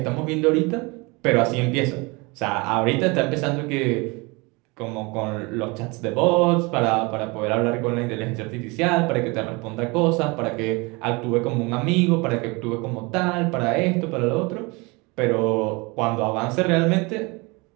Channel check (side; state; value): left; quieter; 26.6 dB